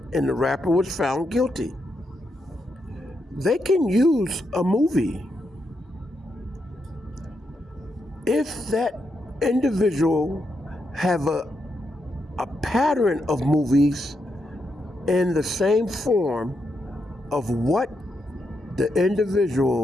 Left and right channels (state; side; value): normal; both; correlation 0.82